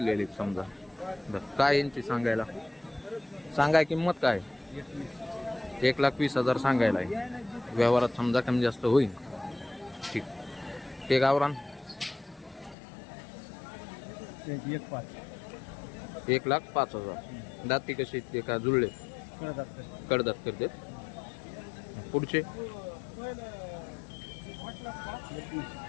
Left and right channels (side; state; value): right; drops out; at 12.8 s